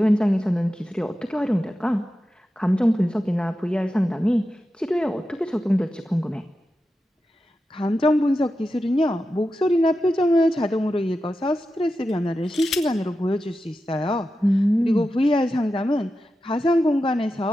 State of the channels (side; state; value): both; normal; correlation 0.91